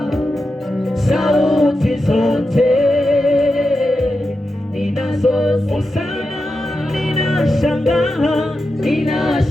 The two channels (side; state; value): both; normal; correlation 0.89